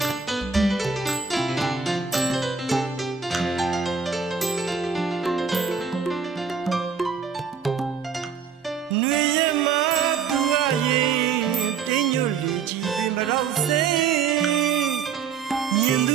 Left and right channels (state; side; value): quieter; left; 6.1 dB